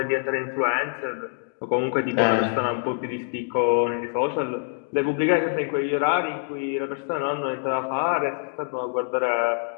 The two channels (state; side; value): silent; right; 62 dB below the other